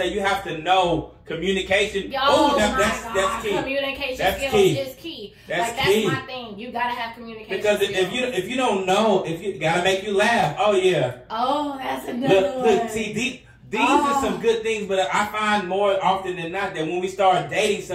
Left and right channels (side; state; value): both; identical; correlation 1.00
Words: you have to know communication. That's key. Communication skills is key. That's my thing. You gotta have communication because skills. if you don't know, if you gotta make you laugh. Oh yeah. Oh, that's another one. Look, see, These are some good things, but I find more often than not that when we start dating